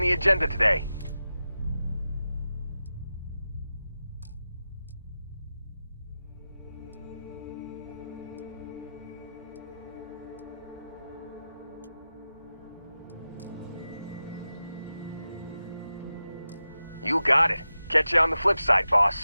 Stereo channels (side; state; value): both; inverted; correlation -0.93